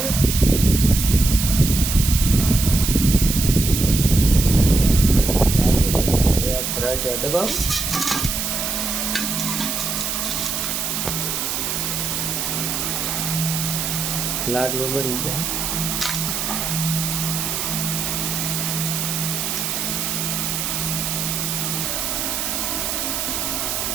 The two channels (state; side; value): noise; right; hiss, 2 dB below the sound